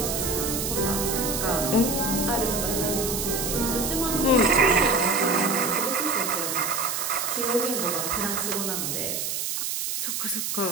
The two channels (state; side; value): noise; right; hiss, 2 dB below the sound